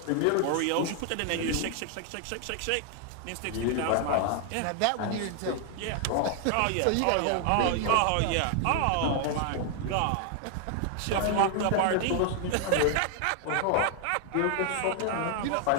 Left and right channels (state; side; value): different; both; correlation 0.00